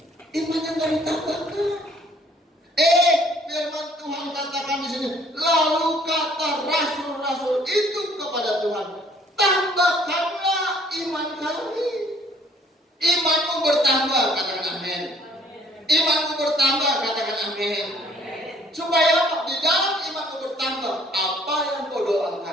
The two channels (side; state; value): both; normal; correlation 0.60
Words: Imannya nggak ditambahkan. Firman Tuhan katakan di sini. Lalu kata rasul-rasul itu kepada Tuhan, tambahkanlah iman kami. Imanmu bertambah, katakan amin. Imanmu bertambah, katakan amin. Supaya apa? Di dalam imanmu bertambah, apa yang kau